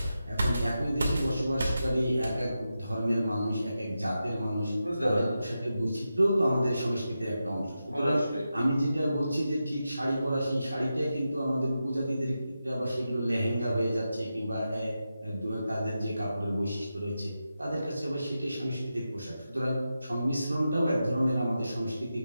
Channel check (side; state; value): both; inverted; correlation -0.90